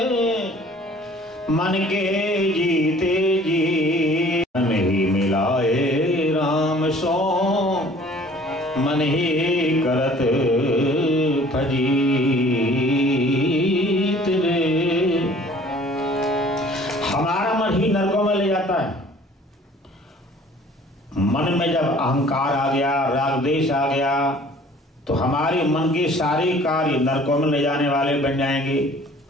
मन के जीते जी, मन ही मिलाए राम सो, मन ही करत फजीत रे। हमारा मन ही नरकों में ले जाता है। मन में जब अहंकार आ गया, राग द्वेष आ गया, तो हमारे मन के सारे कार्य नरकों में ले जाने वाले बन जाएंगे।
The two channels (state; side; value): normal; both; correlation 0.52